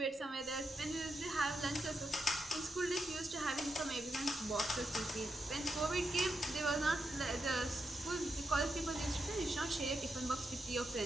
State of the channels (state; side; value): normal; both; correlation 0.85